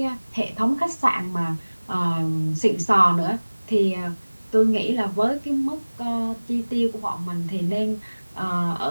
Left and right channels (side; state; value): both; inverted; correlation -1.00